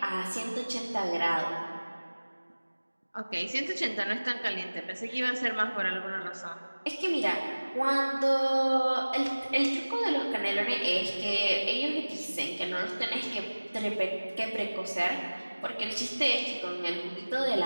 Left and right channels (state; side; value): inverted; both; correlation -1.00